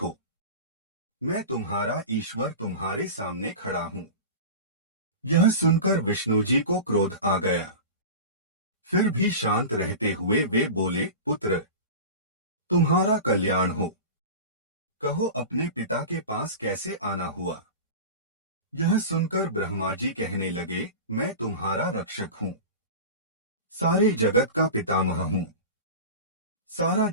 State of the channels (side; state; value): both; inverted; correlation -0.31